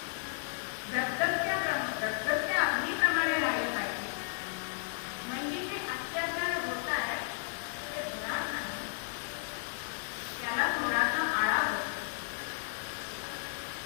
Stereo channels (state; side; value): silent; right; 55 dB below the other